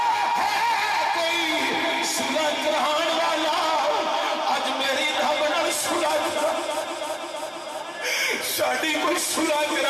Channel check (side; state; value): both; identical; correlation 1.00